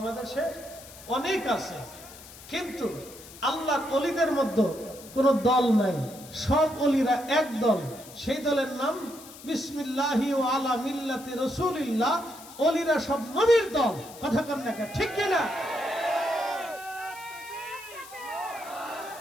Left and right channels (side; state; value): left; noise; hiss, 17 dB below the sound